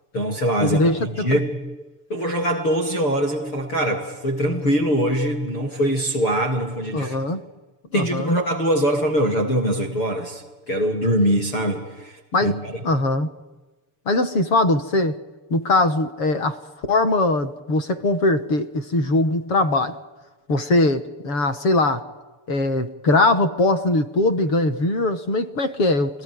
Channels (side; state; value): right; late; 6.9 ms